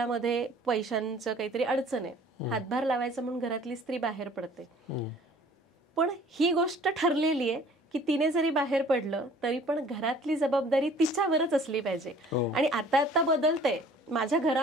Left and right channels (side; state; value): both; normal; correlation 0.52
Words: पैशांचं काहीतरी अडचण आहे, हातभार लावायचा म्हणून घरातली स्त्री बाहेर पडते, पण ही गोष्ट ठरलेली आहे की तिने जरी बाहेर पडलं तरी पण घरातली जबाबदारी तिच्यावरच असली पाहिजे. आणि आता बदलतंय माझ्या